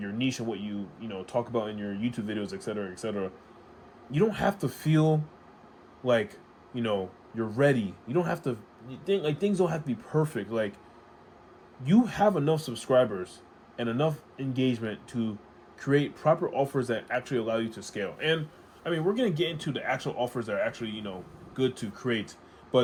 niche and what you talk about in your YouTube videos, etc., etc. You don't have to feel like, you're ready. You don't have to think like things don't have to be perfect. Like, you have enough subscribers and enough engagement to create proper offers that actually allow you to scale. And I mean, we're going to get into the actual offers that are actually, good to create,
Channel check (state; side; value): identical; both; correlation 1.00